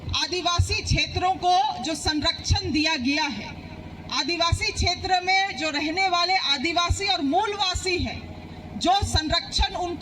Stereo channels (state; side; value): identical; both; correlation 1.00